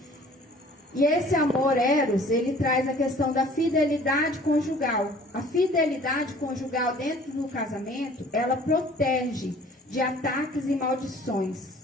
E esse amor eros, ele traz a questão da fidelidade conjugal. A fidelidade conjugal dentro do casamento, ela protege de ataques e maldições.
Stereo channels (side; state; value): both; normal; correlation 0.51